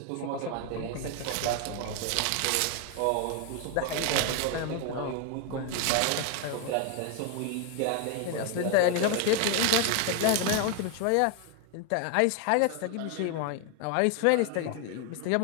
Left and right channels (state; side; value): different; both; correlation 0.01